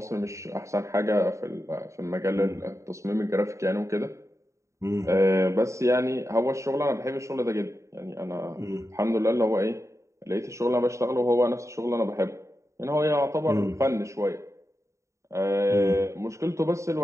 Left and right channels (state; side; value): late; left; 0.14 ms